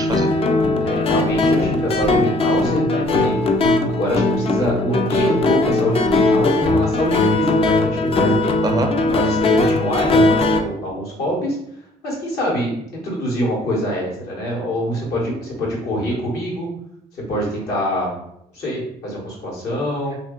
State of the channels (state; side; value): normal; both; correlation 0.59